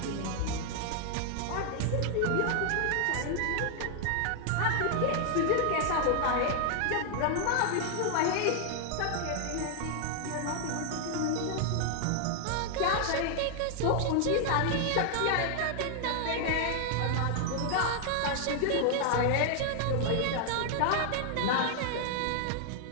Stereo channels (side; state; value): both; different; correlation 0.00